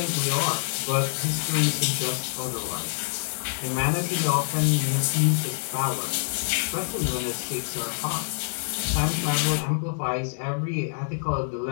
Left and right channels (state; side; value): silent; right; digital silence